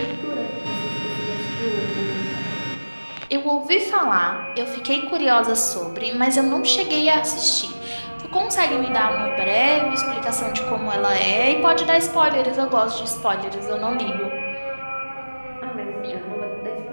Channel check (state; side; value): inverted; both; correlation -1.00